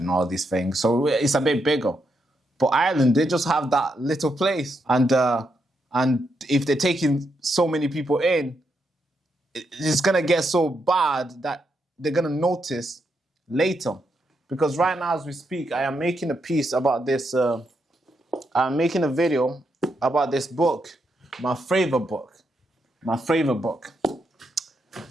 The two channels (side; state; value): both; normal; correlation 0.81